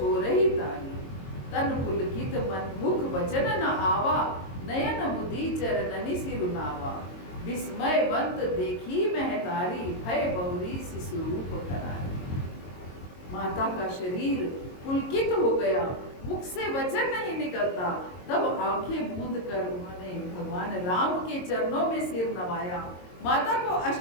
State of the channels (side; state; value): right; late; 22 ms